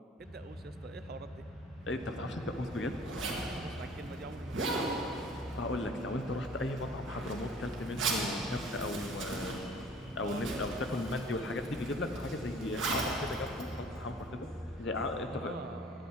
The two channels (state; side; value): normal; both; correlation 0.50